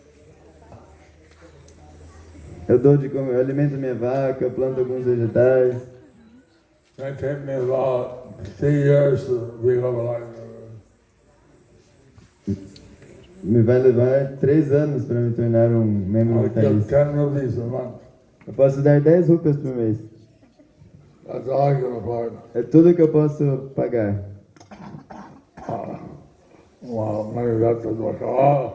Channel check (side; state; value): both; identical; correlation 1.00